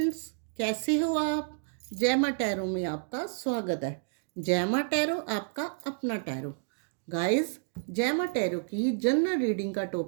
कैसे हो आप। जय माँ टैरो में आपका स्वागत है। जय माँ टैरो आपका अपना टैरो। गाइस, जय माँ टैरो की जनरल रीडिंग का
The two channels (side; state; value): left; silent; digital silence